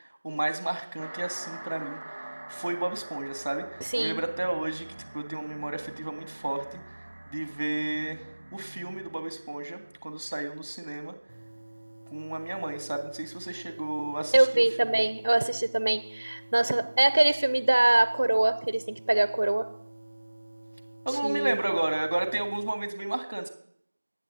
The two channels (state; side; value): inverted; both; correlation -1.00